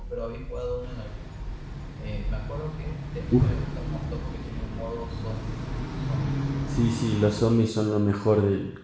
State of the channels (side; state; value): both; identical; correlation 1.00